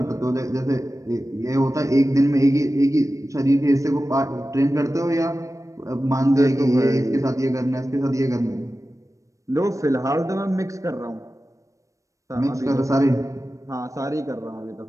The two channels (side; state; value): left; late; 0.15 ms